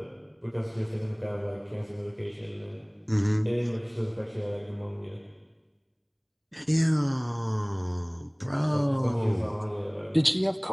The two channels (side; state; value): both; identical; correlation 1.00